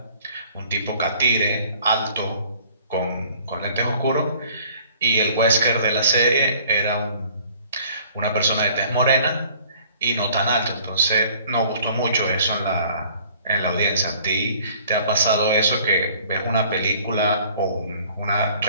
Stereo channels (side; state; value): both; inverted; correlation -0.54